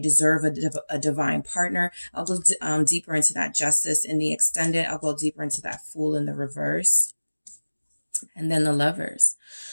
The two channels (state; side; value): inverted; both; correlation -1.00